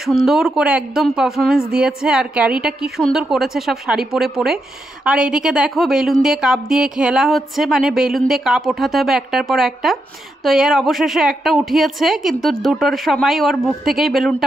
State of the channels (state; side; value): normal; both; correlation 0.83